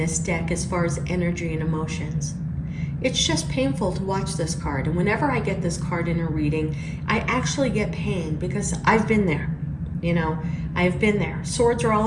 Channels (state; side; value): identical; both; correlation 1.00